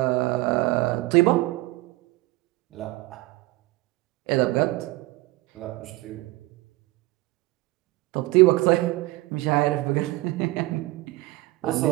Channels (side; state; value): left; quieter; 20.0 dB